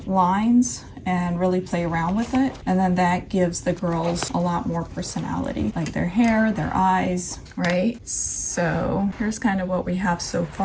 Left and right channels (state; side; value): identical; both; correlation 1.00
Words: lines and really play around with it. And then that gives the girls a lot more personality, like their hair, their eyes, right? So here's kind of what we have so